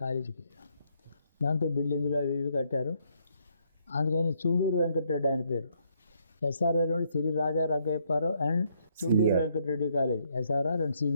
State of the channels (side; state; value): both; inverted; correlation -0.72